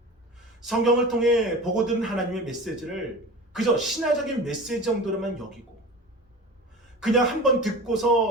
성경을 통해 보고 들은 하나님의 메시지를 그저 신화적인 메시지 정도로만 여기고, 그냥 한번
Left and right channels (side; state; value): both; normal; correlation 0.34